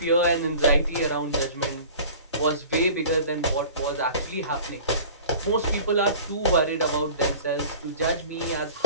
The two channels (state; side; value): inverted; both; correlation -0.43